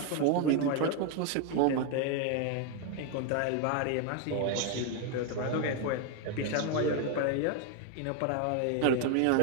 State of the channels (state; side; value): different; both; correlation 0.01